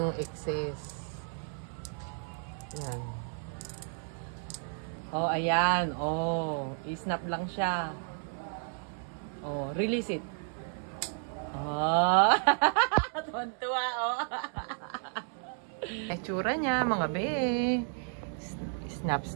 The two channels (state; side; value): silent; left; 56 dB below the other